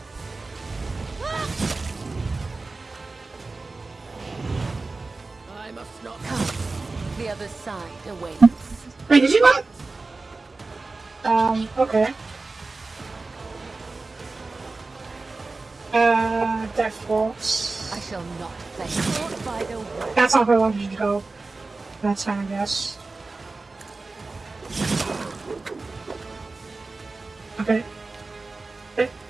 I must not come. The other side awaits. Wait, did you not? Okay. Death Waltz. I shall not play caught by the way. That's not where I wanted you to go. That's fine, I guess. Okay. I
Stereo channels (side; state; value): left; quieter; 3.6 dB